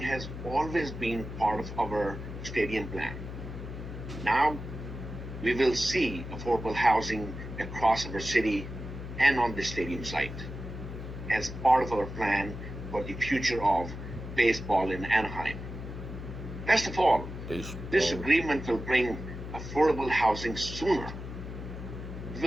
has always been part of our stadium plan. Now, we will see affordable housing across our city and on the stadium site as part of our plan for the future of baseball in Anaheim. Best of all, this agreement will bring affordable housing sooner. We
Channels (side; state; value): left; noise; hum, 9 dB below the sound